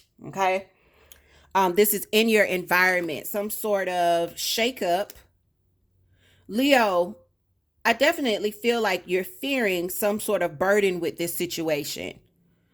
Okay. This is in your environment, some sort of shakeup. Leo, I definitely feel like you're fearing some sort of burden with this situation.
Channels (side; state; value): both; identical; correlation 1.00